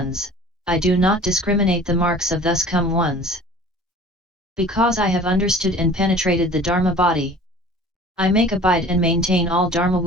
I do not discriminate the marks of thus come ones. Because I have understood and penetrated the Dharma body, I make abide and maintain all Dharma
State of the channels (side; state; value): both; normal; correlation 0.45